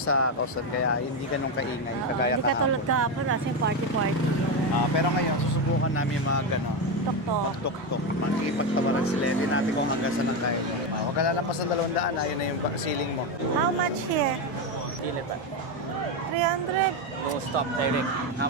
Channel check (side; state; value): both; normal; correlation 0.11